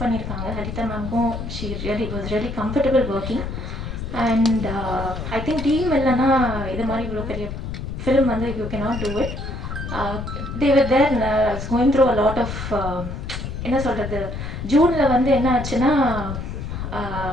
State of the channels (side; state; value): left; noise; rumble, 6 dB below the sound